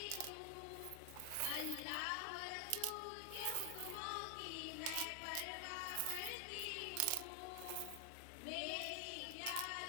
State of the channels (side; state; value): both; different; correlation 0.00